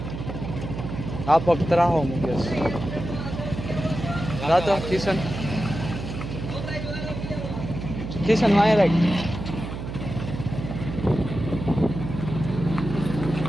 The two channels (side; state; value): right; noise; hum, 7 dB below the sound